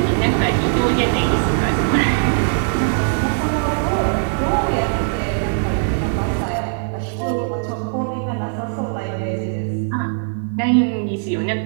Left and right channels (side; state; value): left; silent; digital silence